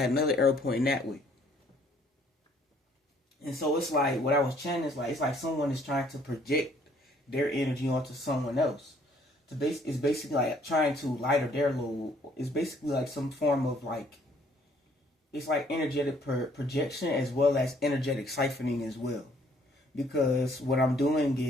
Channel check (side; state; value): both; normal; correlation 0.62